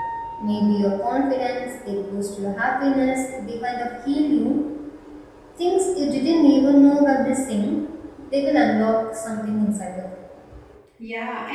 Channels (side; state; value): both; identical; correlation 1.00